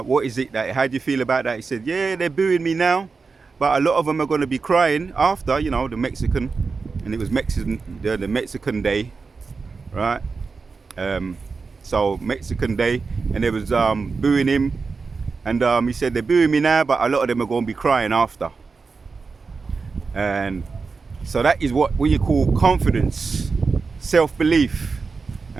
What is it how do you feel about that? He said, yeah, they're booing me now, but a lot of them are going to be crying after, you know, the Mexican, and it was the Mexican Day, right? So Mexican Day, and they was booing him, and he said they're booing me now, but a lot of them are going to be crying after. And so that is what you call confidence, self-belief.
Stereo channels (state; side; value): quieter; left; 4.6 dB